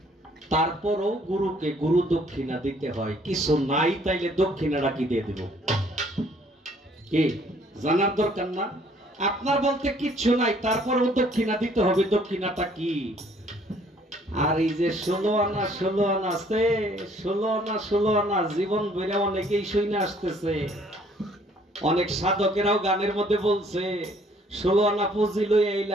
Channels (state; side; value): normal; both; correlation 0.61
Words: তারপরও গুরুকে গুরু দক্ষিণা দিতে হয়। কিছু নাই তাইলে দক্ষিণাটা কি দিয়ে দিব? কি জানার দরকার না? আপনার বলতে কিচ্ছু নাই, তারপরেও দক্ষিণা দিতে হবে। দক্ষিণাটা কি? আর এই যে 16 আনা 16 আনা আছে, 16 আনা 16 আনা জীবন বেড়ে অনেকেই শুনে আসতেছে। অনেক সাধকেরাও গানের মধ্যে বলছে, 16 আনা পুঁজি লই